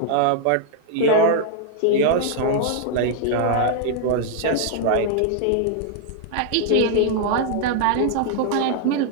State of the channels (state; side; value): different; both; correlation -0.01